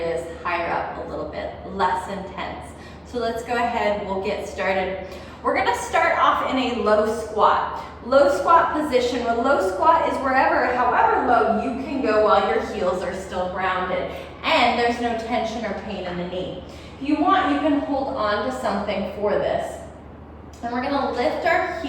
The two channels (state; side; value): identical; both; correlation 1.00